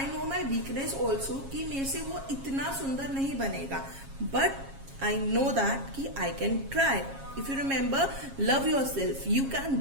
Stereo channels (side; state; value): left; late; 7.4 ms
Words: know my weakness also कि मेरे से वो इतना सुंदर नहीं बनेगा, बट I know that कि I can try. If you remember, love yourself. You can